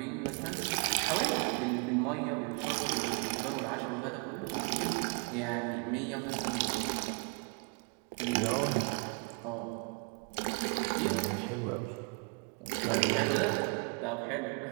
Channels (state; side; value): quieter; left; 33.9 dB